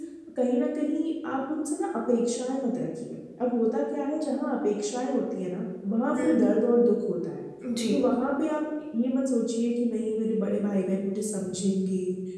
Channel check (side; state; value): both; identical; correlation 1.00